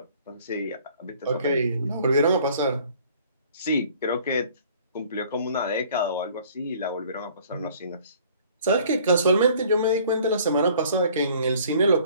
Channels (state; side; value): inverted; both; correlation -0.54